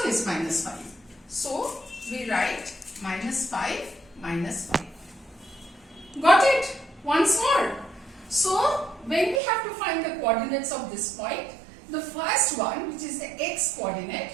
is minus 5. So we write minus 5, minus 5. Got it? Once more. So when we have to find the coordinates of this point, the first one, which is the x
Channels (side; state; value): left; drops out; at 9.4 s